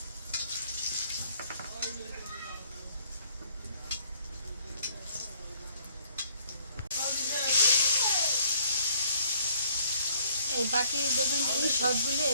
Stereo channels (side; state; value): both; inverted; correlation -0.64